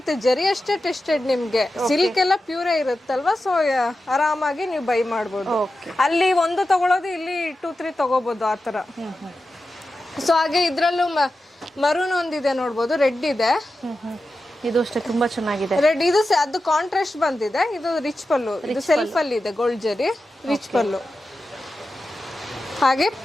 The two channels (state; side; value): normal; both; correlation 0.92